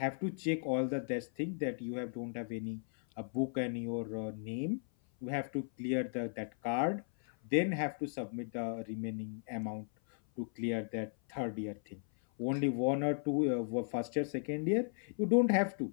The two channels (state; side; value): silent; right; 54 dB below the other